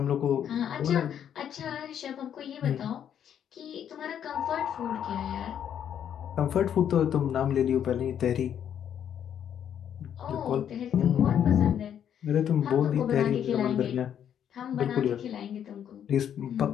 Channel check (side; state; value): right; quieter; 9.3 dB